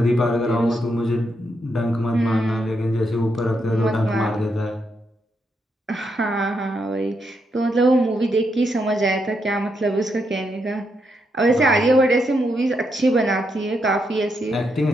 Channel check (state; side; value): normal; both; correlation 0.80